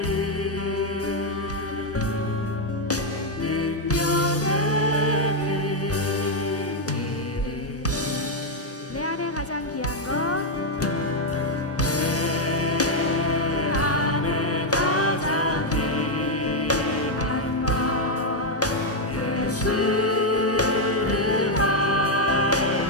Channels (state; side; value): normal; both; correlation 0.01